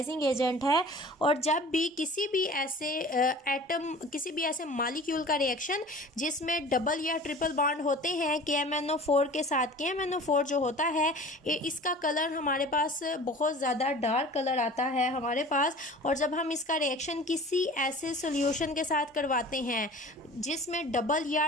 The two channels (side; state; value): both; normal; correlation 0.42